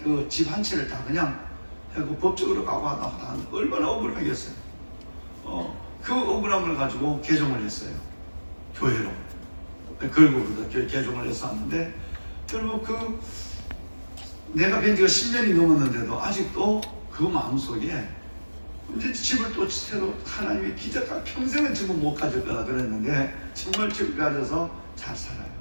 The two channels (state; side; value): inverted; both; correlation -1.00